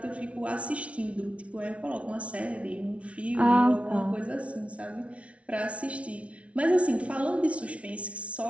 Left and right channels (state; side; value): late; left; 0.063 ms